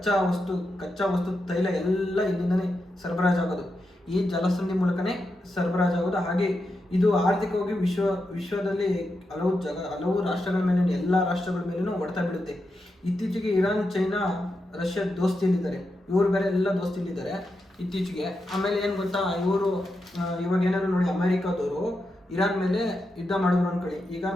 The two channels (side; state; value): both; normal; correlation 0.87